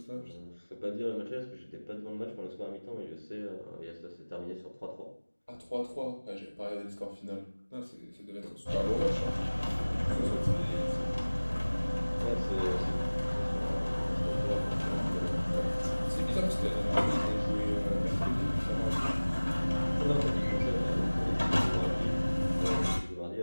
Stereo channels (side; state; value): both; inverted; correlation -1.00